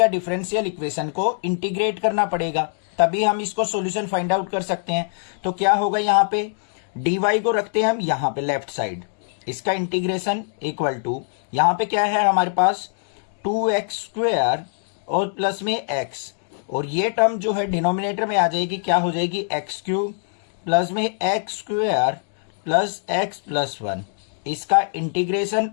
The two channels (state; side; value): silent; right; digital silence